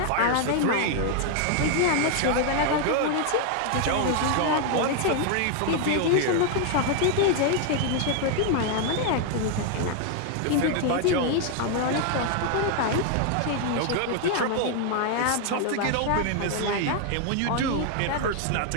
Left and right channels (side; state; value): both; different; correlation 0.00